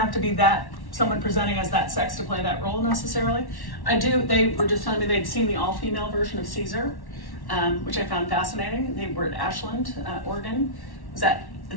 to be that someone presenting as that sex to play that role necessarily. They were just telling me they'd seen the all-female version of Caesar, which I found fascinating. They were at Ashland, Oregon. Was that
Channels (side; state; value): right; late; 1.1 ms